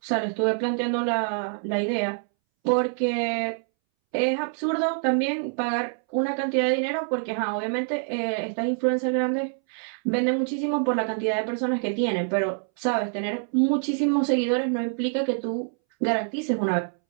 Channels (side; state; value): left; silent; 61 dB below the other